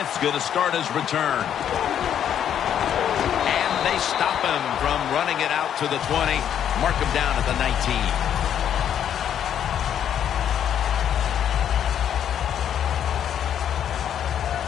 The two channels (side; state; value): right; quieter; 9.5 dB